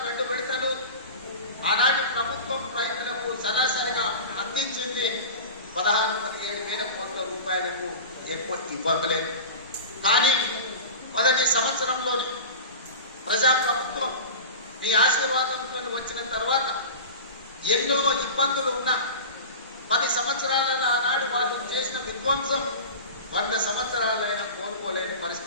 2 విడతలు ఆనాటి ప్రభుత్వం రైతులకు సరాసరిగా అందించింది 16,000 కోట్ల రూపాయలకు ఎక్కువ ఇవ్వలేదు. కానీ మొదటి సంవత్సరంలోని ప్రజాప్రభుత్వం మీ ఆశీర్వాదంతో వచ్చిన తర్వాత ఎన్నో ఇబ్బందులు ఉన్నా 10 సంవత్సరాలలో ఆనాడు వాళ్ళు చేసిన విధ్వంసం 100 సంవత్సరాలైనా కోలుకోలేని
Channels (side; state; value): both; inverted; correlation -0.32